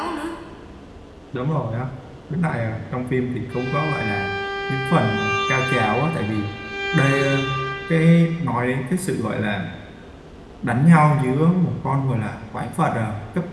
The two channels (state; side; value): identical; both; correlation 1.00